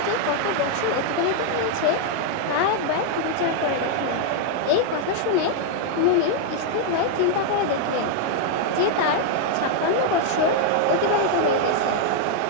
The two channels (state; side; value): different; both; correlation 0.00